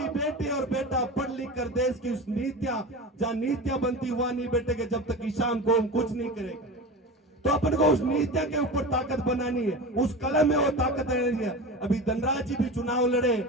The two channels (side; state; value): both; normal; correlation 0.29